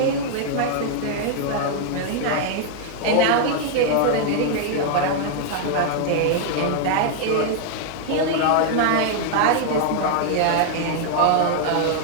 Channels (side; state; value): both; different; correlation 0.00